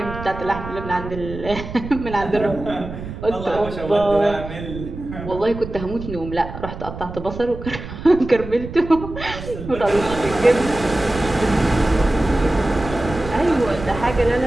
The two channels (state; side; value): noise; right; rumble, 10 dB below the sound